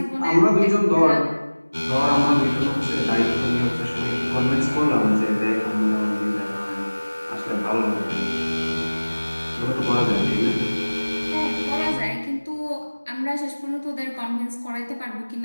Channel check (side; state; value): both; inverted; correlation -1.00